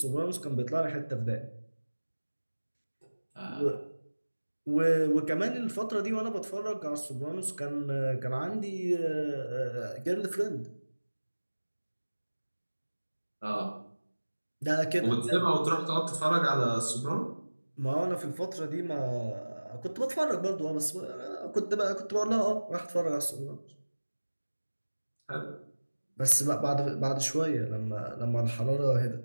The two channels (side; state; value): both; inverted; correlation -1.00